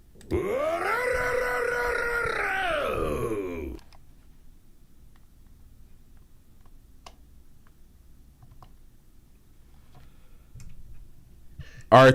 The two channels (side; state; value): both; identical; correlation 1.00